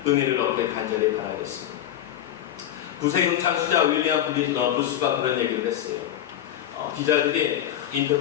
은혜를 얻길 간절히 바라겠습니다. 구세경 창시자 윌리엄 부스가 그런 얘기를 했어요. 기자들이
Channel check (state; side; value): quieter; right; 11.4 dB